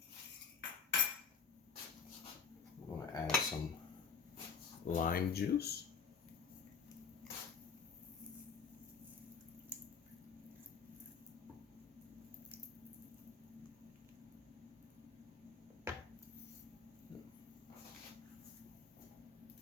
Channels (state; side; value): quieter; right; 6.1 dB